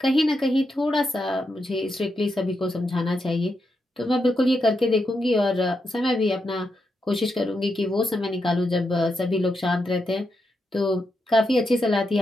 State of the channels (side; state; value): both; normal; correlation 0.84